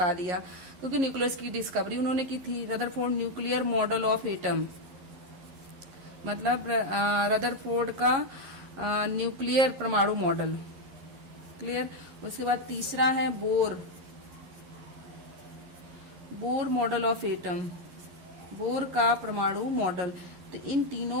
दिया, क्योंकि न्यूक्लियस की डिस्कवरी उन्होंने की थी। Rutherford nuclear model of atom, मतलब रदरफोर्ड का न्यूक्लियर परमाणु मॉडल। क्लियर। उसके बाद तीसरा है Bohr model of atom, bore का परमाणु मॉडल। तो इन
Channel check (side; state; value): left; late; 11 ms